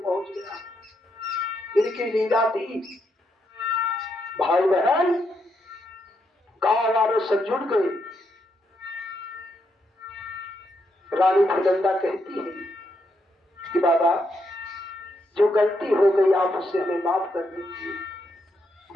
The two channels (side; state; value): both; normal; correlation 0.79